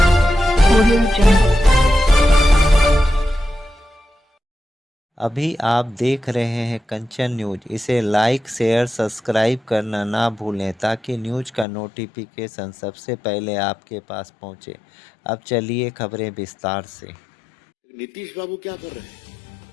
Audio Jungle. अभी आप देख रहे हैं कंचन न्यूज। इसे लाइक शेयर सब्सक्राइब करना ना भूलें ताकि न्यूज का नोटिफिकेशन सबसे पहले आपके पास पहुंचे। अब चलिए खबरें विस्तार से। नीतीश बाबू क्या कर रहे हैं?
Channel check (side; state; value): right; drops out; at 11.7 s